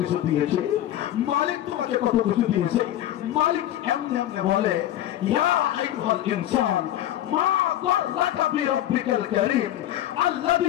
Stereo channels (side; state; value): right; quieter; 12.8 dB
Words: দিয়েছে, মালিক তোমাকে কত কিছু দিয়েছে। মালিক এমনি এমনি বলে, ইয়া আইয়ুহাল ইনসান মা গররাকা বিরব্বিকাল কারীম